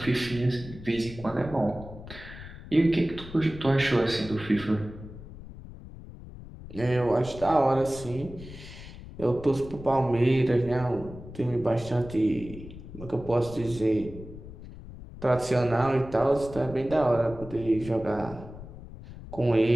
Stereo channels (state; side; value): noise; left; rumble, 14 dB below the sound